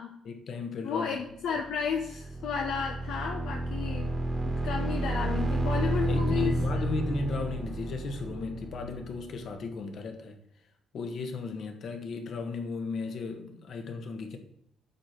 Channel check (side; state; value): both; normal; correlation 0.78